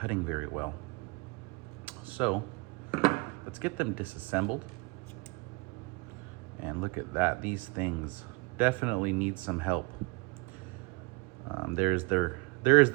very well. So let's get them disassembled. And look at that, these things definitely need some help. There is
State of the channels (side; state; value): left; quieter; 28.0 dB